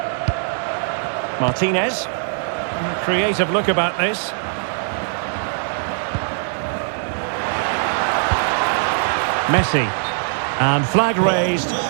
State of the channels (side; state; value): left; silent; 65 dB below the other